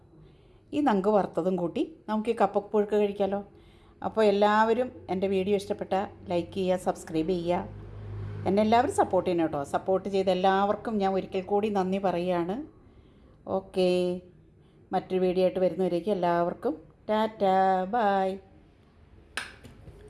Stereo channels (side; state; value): both; identical; correlation 1.00